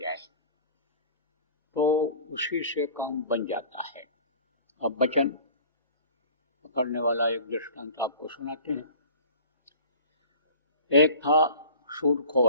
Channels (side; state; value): both; inverted; correlation -0.44